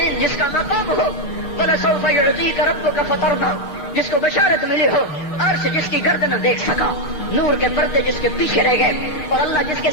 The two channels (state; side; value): late; right; 6.5 ms